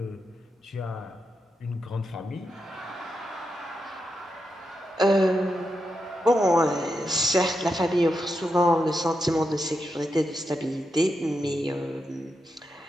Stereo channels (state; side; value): normal; both; correlation 0.85